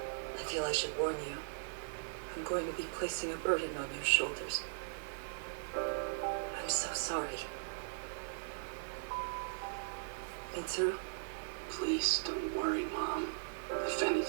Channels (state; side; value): silent; left; digital silence